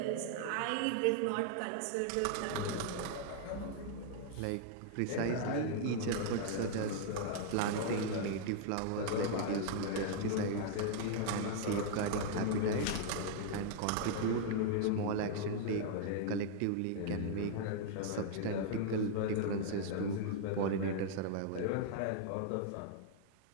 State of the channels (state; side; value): different; both; correlation -0.01